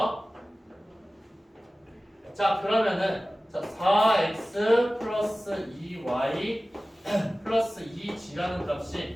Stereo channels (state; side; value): normal; both; correlation 0.97